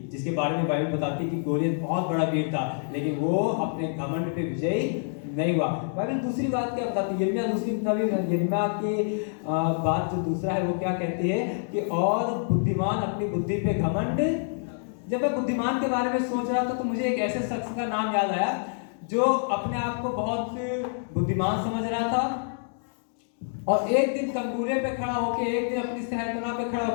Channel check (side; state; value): right; silent; digital silence